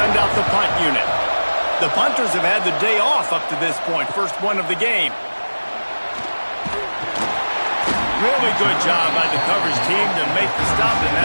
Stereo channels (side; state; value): both; inverted; correlation -1.00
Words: out the punt unit. The punters have had the day off up to this point. First one of the game. Really good job by the coverage team to make the stop, and